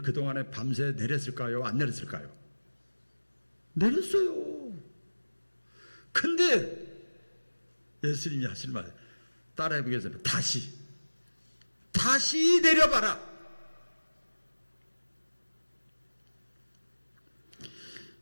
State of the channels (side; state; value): both; inverted; correlation -1.00